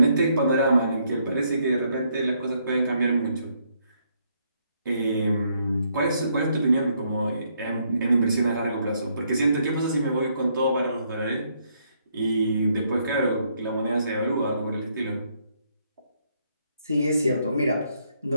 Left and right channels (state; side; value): inverted; both; correlation -0.72